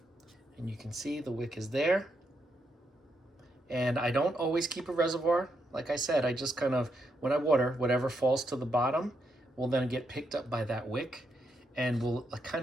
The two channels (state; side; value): normal; both; correlation 0.80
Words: And you can see the wick is there. And I don't always keep a reservoir. Like I said, I just kind of, when I water, whatever falls to the bottom will then get picked up by that wick and will